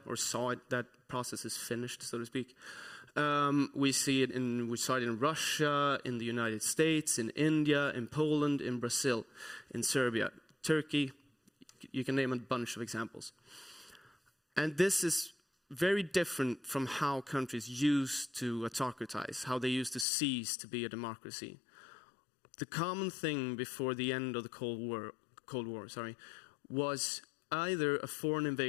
or saw it, that process is finished, so to speak. We saw it in Russia, in the United States, in India, in Poland, in Brazil, in Serbia, Turkey. You can name a bunch of examples. And this is very different from how countries used to autocratize, how they used to cease to be a democracy. The common thing before the end of the Cold War, was either a foreign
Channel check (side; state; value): right; drops out; at 20.1 s